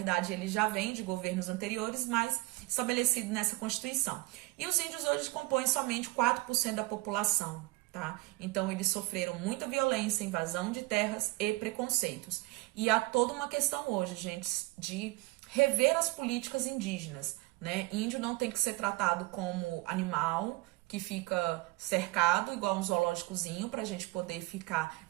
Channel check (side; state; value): left; quieter; 21.0 dB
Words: ele já vem de governos anteriores, mas estabelecido nessa Constituição. E os índios hoje compõem somente 4% da população, tá? Então eles sofreram muita violência, invasão de terras e preconceitos. E há toda uma questão hoje, gente, de rever as políticas indígenas, né? Índio não tem que ser tratado como animal que fica cercado, igual um zoológicozinho, para a gente poder ficar